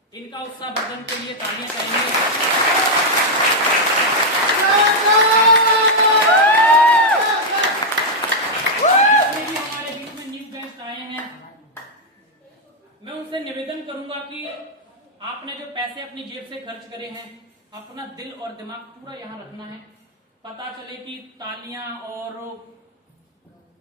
इनका उत्साह वर्धन के लिए तालियां करेंगे। मैं उनसे निवेदन करूंगा कि आपने जो पैसे अपनी जेब से खर्च करे हैं, अपना दिल और दिमाग पूरा यहाँ रखना है। पता चले कि तालियां और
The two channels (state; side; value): normal; both; correlation 0.00